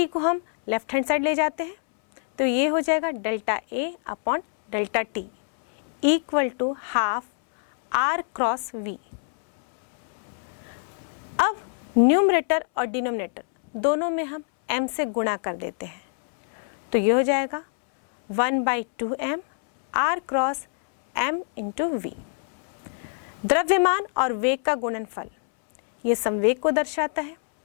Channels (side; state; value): right; silent; 62 dB below the other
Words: को हम लेफ्ट हैंड साइड ले जाते हैं, तो ये हो जाएगा delta A upon delta t equal to half R cross V। अब न्यूमरेटर और डिनोमिनेटर दोनों में हम m से गुणा कर देते हैं, तो ये हो जाएगा 1/2m R cross m into V। द्रव्यमान और वेग का गुणनफल ये संवेग को दर्शाता है,